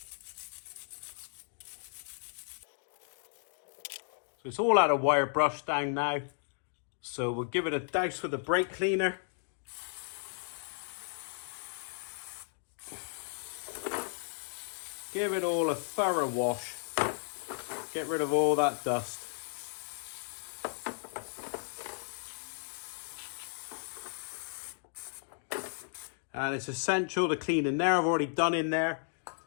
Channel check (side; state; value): right; silent; digital silence